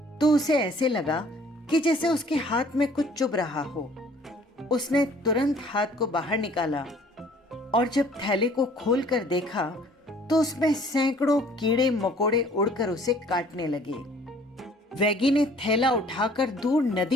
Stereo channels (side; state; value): both; normal; correlation 0.55